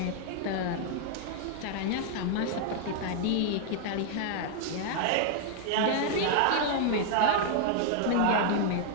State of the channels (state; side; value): different; both; correlation 0.00